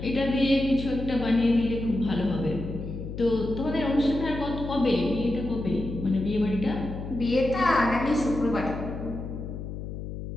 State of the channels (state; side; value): noise; left; hum, 8 dB below the sound